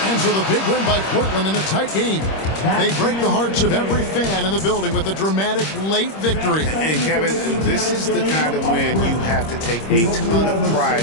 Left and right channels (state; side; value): late; right; 26 ms